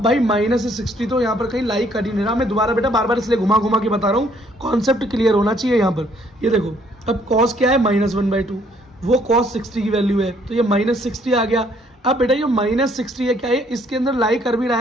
भाई -60 तो यहाँ पर कहीं लाई कर ही नहीं रहा। मैं दोबारा बेटा बार बार इसलिए घुमा के बता रहा हूँ, कॉन्सेप्ट क्लियर होना चाहिए यहाँ पर। ये देखो अब cos क्या है -1/2, वो cos 60 की वैल्यू है, तो ये -60 आ गया। अब बेटा ये -60 है क्या है, इसके अंदर लाई कर भी रहा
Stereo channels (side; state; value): both; normal; correlation 0.65